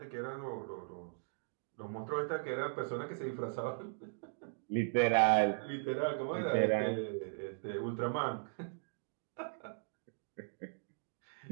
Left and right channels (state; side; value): silent; left; digital silence